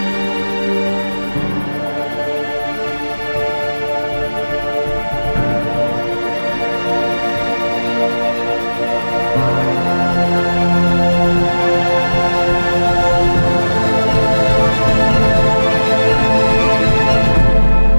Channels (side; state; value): both; inverted; correlation -1.00